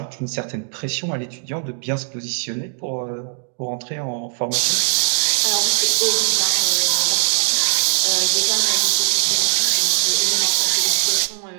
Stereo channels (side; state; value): left; silent; 66 dB below the other